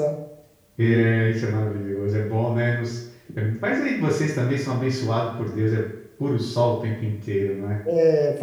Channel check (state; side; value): identical; both; correlation 1.00